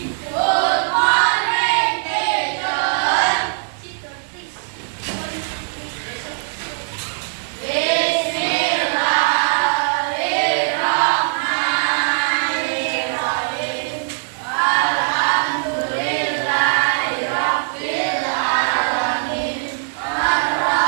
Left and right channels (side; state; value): left; silent; digital silence